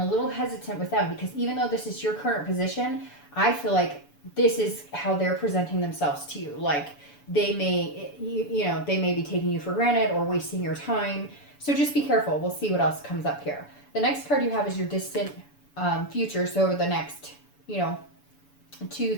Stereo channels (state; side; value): late; right; 7.0 ms